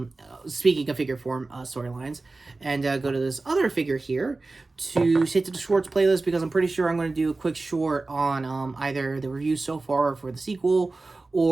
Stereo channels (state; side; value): quieter; left; 3.4 dB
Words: speaking of figure form storylines, and go to this other figure here to hit to the shorts playlist, because I'm pretty sure I'm going to do a quick short on either the review so far for the sequel,